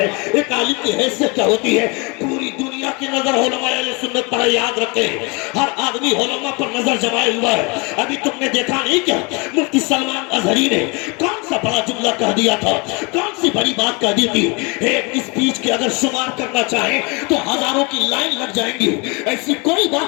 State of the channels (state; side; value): quieter; right; 29.6 dB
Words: ایک عالم کی حیثیت کیا ہوتی ہے؟ پوری دنیا کی نظر علماء اہل سنت پر یاد رکھیں، ہر آدمی علماء پر نظر جمائے ہوا ہے۔ ابھی تم نے دیکھا نہیں کیا مفتی سلمان اظہری نے کون سا بڑا جملہ کہہ دیا تھا، کون سی بڑی بات کہہ دی تھی؟ ایک اسپیچ کے اگر شمار کرنا چاہیں تو ہزاروں کی لائن لگ جائیں گی۔ ایسی کوئی